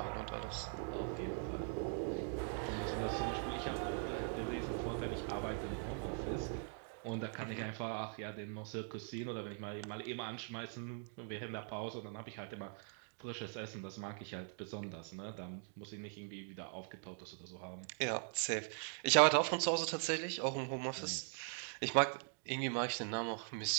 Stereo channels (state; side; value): silent; left; 50 dB below the other